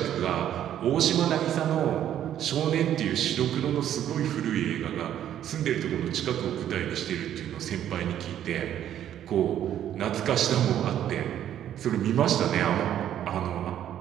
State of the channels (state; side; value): quieter; left; 10.8 dB